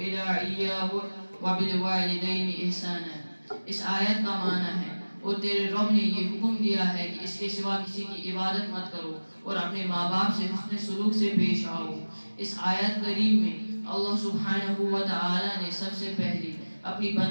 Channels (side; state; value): both; inverted; correlation -1.00